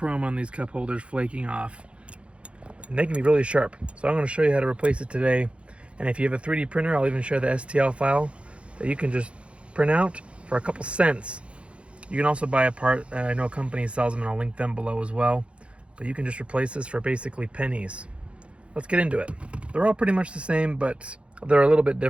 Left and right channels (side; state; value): left; late; 0.060 ms